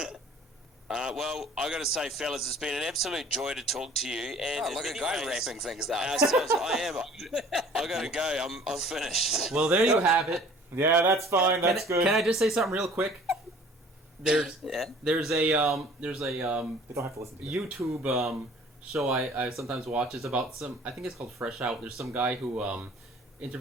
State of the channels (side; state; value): both; normal; correlation 0.50